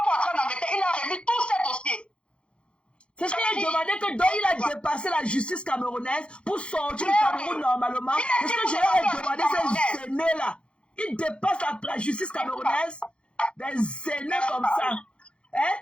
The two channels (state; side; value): late; right; 0.057 ms